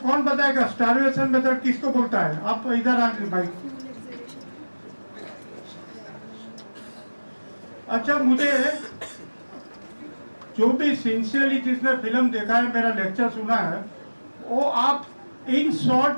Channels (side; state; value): both; inverted; correlation -1.00